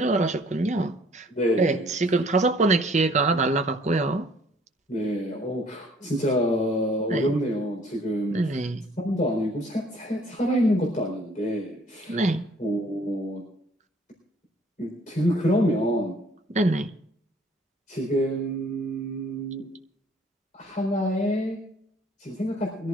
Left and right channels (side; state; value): both; normal; correlation 0.58